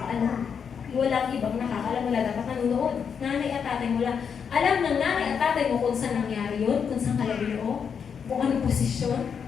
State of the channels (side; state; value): right; quieter; 6.9 dB